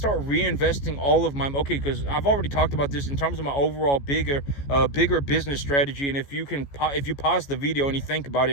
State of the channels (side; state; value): right; late; 14 ms